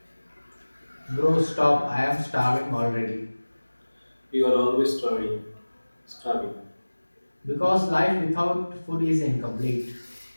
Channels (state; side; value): inverted; both; correlation -1.00